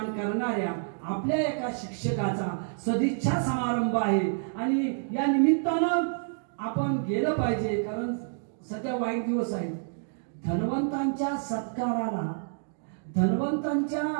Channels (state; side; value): silent; left; digital silence